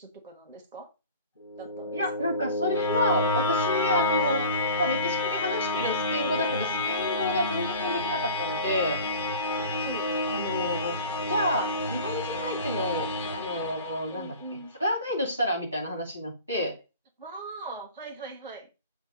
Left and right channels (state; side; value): inverted; both; correlation -0.39